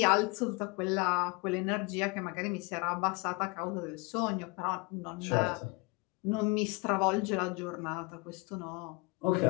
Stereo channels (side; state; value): right; quieter; 26.6 dB